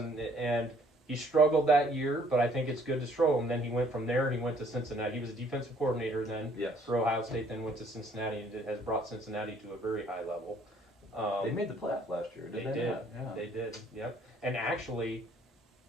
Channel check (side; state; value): both; normal; correlation 0.61